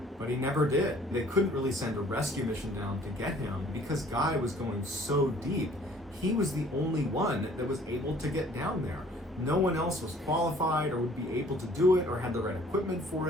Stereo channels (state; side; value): normal; both; correlation 0.55